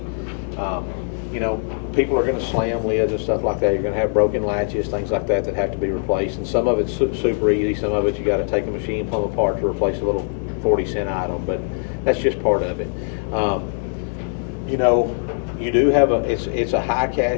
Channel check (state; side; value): silent; right; digital silence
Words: People are going to slam lids and stuff like that. You're going to have broken latches, things like that have to be replaced. And some of it's super easy. Some of it you got to take a machine plumb apart to replace a little 40-cent item, but that's just part of it. You do have it's a high